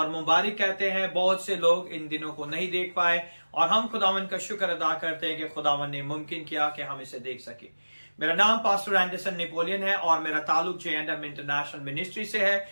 मुबारक कहते हैं। बहुत से लोग इन दिनों को नहीं देख पाए और हम खुदावन का शुक्र अदा करते हैं कि खुदावन ने मुमकिन किया कि हम इसे देख सके। मेरा नाम पास्टर एंडरसन नेपोलियन है और मेरा ताल्लुक J&M इंटरनेशनल मिनिस्ट्री से है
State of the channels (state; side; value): inverted; both; correlation -1.00